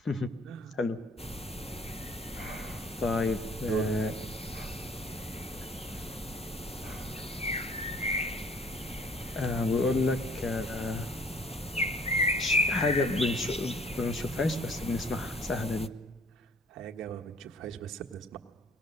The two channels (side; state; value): both; normal; correlation 0.54